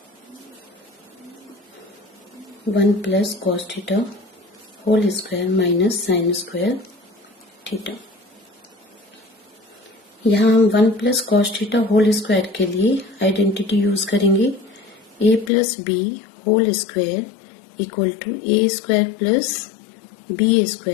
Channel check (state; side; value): drops out; right; at 15.5 s